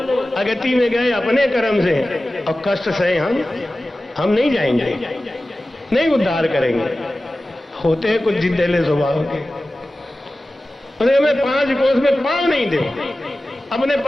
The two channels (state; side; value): normal; both; correlation 0.95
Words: अगति में गए अपने कर्म से और कष्ट सहे हम नहीं जाएंगे, नहीं उद्धार करेंगे। होते हैं कुछ जिद्देले स्वभाव के, उन्हें मैं 5 कोस में पाँव नहीं दे। अपने